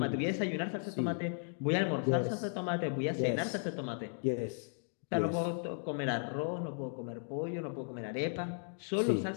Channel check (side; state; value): right; silent; 54 dB below the other